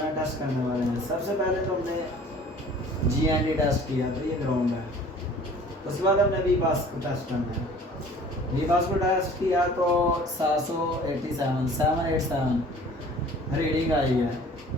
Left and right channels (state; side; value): normal; both; correlation 0.48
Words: टेस्ट करने वाले हैं। सबसे पहले तो हमने GND टेस्ट किया, तो ये ग्राउंड है। उसके बाद हमने भी पास को टेस्ट करना है। वीमास को टेस्ट किया तो 787 रीडिंग आई है।